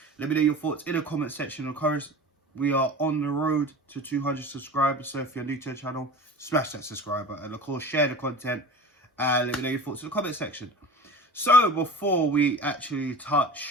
Let me know your thoughts in the comment section. Of course, we are on the road to 200 subscribers, so if you're new to the channel, smash that subscribe button and of course share the content and let me know your thoughts in the comment section. So before we actually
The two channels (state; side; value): normal; both; correlation 0.36